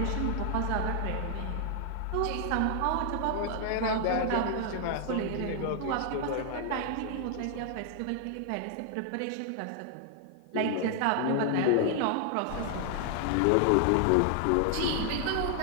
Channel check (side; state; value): both; different; correlation 0.00